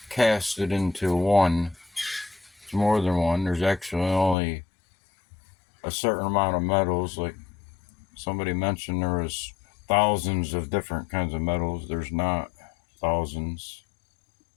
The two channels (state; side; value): drops out; right; at 4.4 s